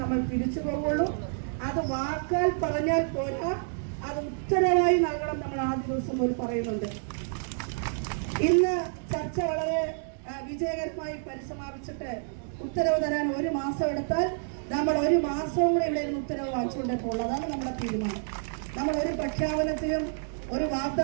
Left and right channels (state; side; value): silent; left; digital silence